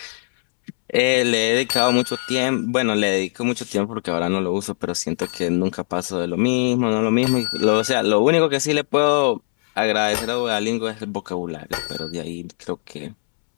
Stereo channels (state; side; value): silent; right; 65 dB below the other